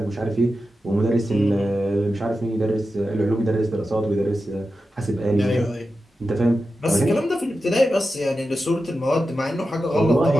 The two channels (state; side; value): normal; both; correlation 0.91